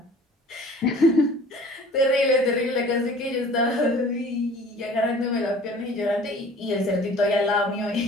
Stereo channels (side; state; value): both; normal; correlation 0.48